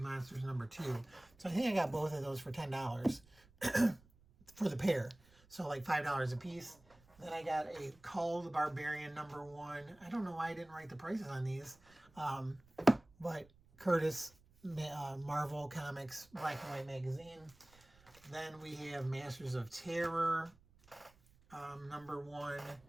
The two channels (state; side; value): noise; right; rumble, 28 dB below the sound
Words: #2. So I think I got both of those for $10 for the pair. So like $5 a piece. Then I got a Cull the Barbarian #1. I don't know why I didn't write the prices on these. But Curtis Marvel Comics black and white magazine. Then we have Masters of Terror #1,